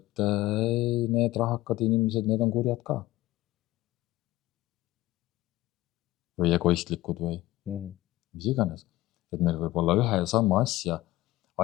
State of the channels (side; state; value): right; quieter; 17.2 dB